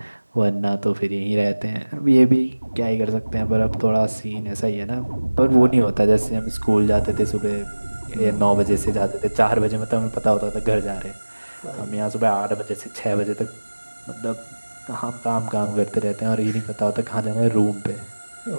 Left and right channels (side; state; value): both; inverted; correlation -1.00